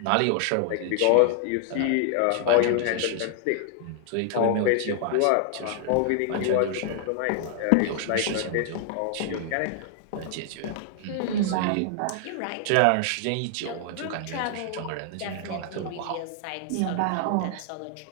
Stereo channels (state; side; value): different; both; correlation 0.00